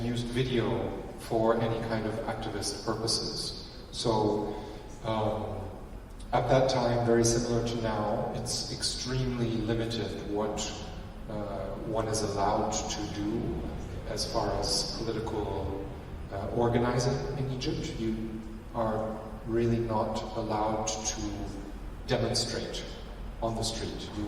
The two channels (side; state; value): both; identical; correlation 1.00